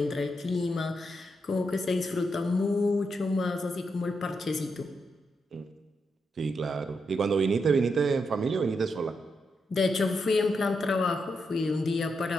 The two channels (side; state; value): both; normal; correlation 0.83